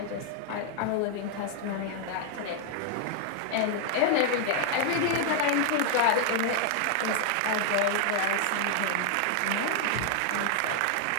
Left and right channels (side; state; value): both; different; correlation 0.00